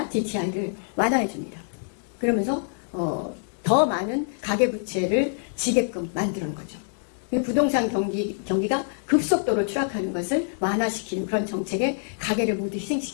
DTI를 완화해 줍니다. 그러면서 더 많은 가계부채를 지게끔 만드는 거죠. 부동산 경기가 급속도로 추락하는 것을 완화시키는 그런 정책에 가계를 모두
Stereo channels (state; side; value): silent; right; digital silence